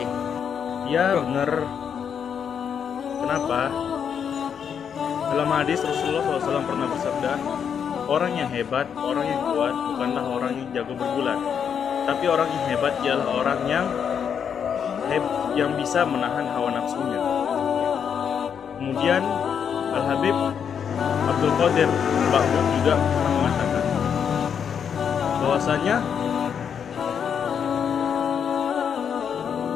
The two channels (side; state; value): right; quieter; 7.6 dB